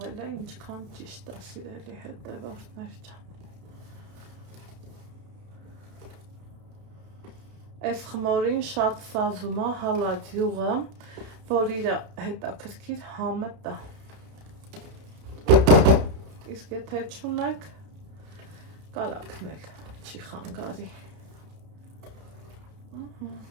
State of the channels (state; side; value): late; left; 31 ms